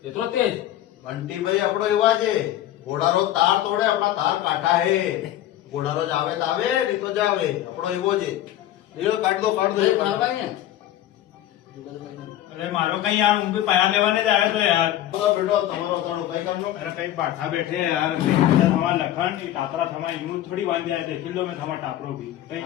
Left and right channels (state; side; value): quieter; right; 12.9 dB